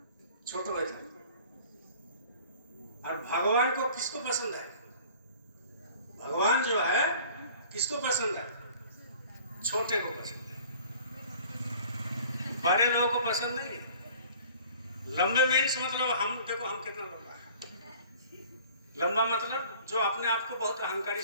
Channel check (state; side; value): inverted; both; correlation -0.49